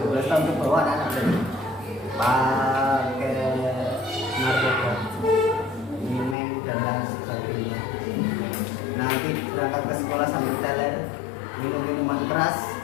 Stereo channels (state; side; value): drops out; right; at 6.4 s